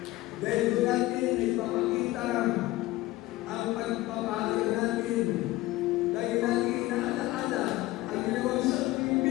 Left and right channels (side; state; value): right; quieter; 17.9 dB